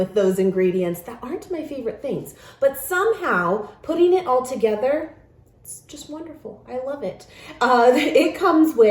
those ingredients that aren't my favorite things. But somehow, putting it all together, it's just wonderful. I love it. It comes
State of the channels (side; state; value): both; identical; correlation 1.00